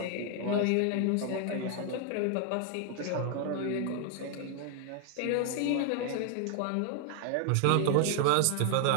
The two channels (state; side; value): different; both; correlation 0.00